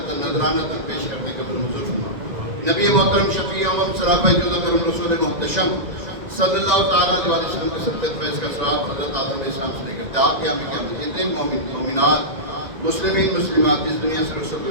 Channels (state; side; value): late; left; 1.9 ms